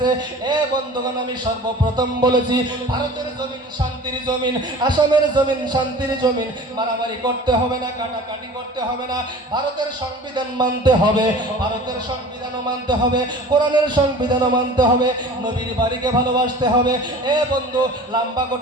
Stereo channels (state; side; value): normal; both; correlation 0.41